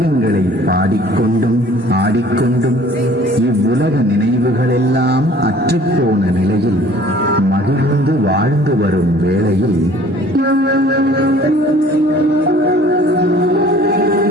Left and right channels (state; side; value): normal; both; correlation 0.52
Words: பாடிக்கொண்டும் ஆடிக்கொண்டும் இவ்வுலக நினைவுகளெல்லாம் அற்றுப்போன நிலையில் மகிழ்ந்து வாழ்ந்து வரும் வேளையில்